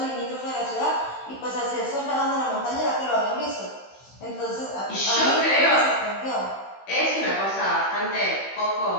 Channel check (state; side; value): late; right; 15 ms